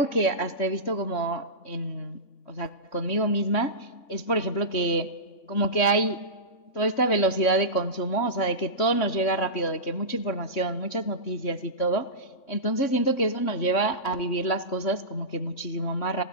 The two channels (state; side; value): late; right; 3.6 ms